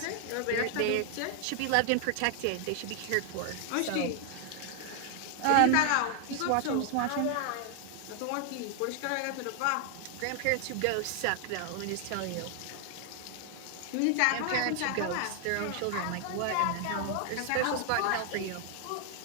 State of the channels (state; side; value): different; both; correlation 0.00